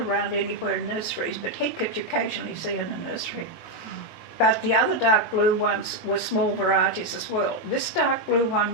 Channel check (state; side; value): late; right; 18 ms